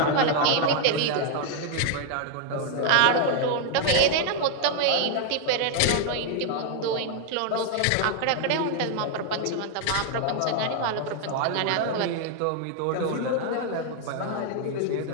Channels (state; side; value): different; both; correlation 0.00